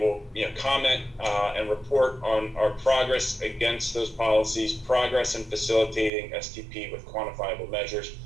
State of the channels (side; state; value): left; drops out; at 6.1 s